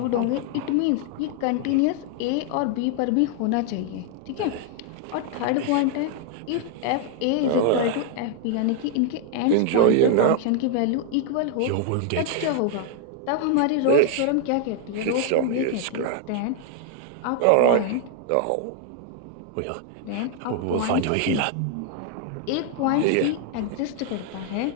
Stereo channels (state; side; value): different; both; correlation 0.00